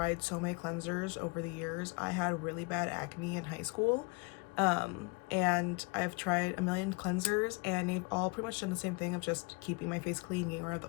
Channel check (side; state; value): right; quieter; 29.8 dB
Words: so many cleansers over the years. I had really bad acne in high school. And I've tried a million cleansers and they've all pretty much done the same thing of just keeping my face clean, getting rid of